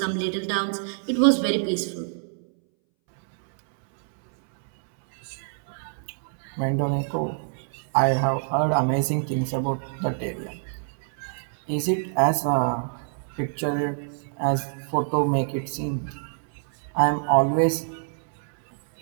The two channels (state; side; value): silent; left; 61 dB below the other